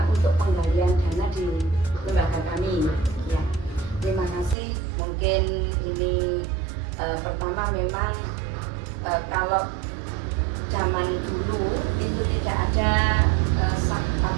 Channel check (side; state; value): left; drops out; at 4.5 s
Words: untuk penggalian dana di lembaga kami. Ya, terima kasih. Mungkin ini pertama memang kalau zaman dulu itu tidak ada